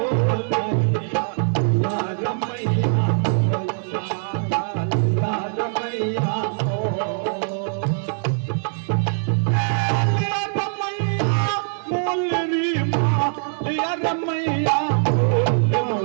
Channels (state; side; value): silent; left; digital silence